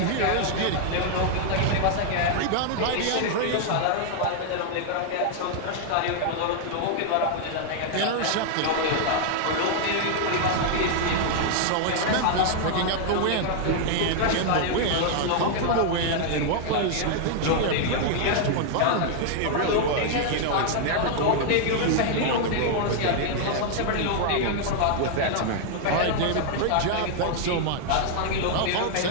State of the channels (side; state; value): both; different; correlation 0.00